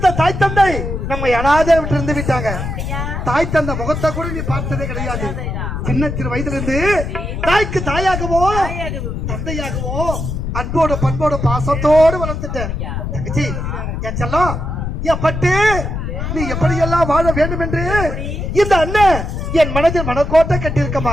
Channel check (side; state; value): left; noise; rumble, 4 dB below the sound